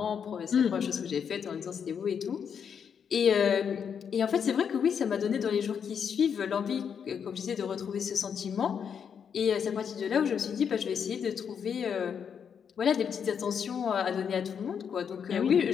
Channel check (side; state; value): right; quieter; 7.3 dB